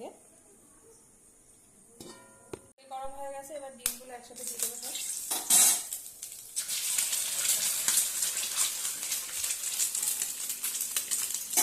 গরম হয়ে গেছে, এবার ডিমগুলো একসাথে দিয়ে দেবো সব।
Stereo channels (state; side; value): identical; both; correlation 1.00